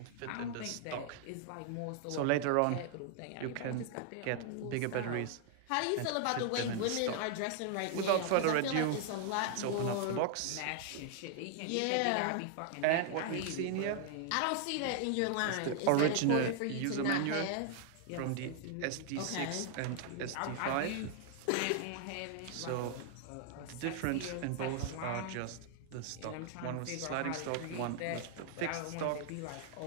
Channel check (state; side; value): different; both; correlation 0.00